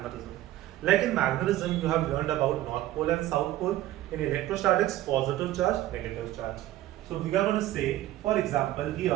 Like in magnetism, you have learned about North Pole and South Pole. In electrostatics, positive charge, negative charge. So we are going to say, for example,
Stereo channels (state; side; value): quieter; left; 14.8 dB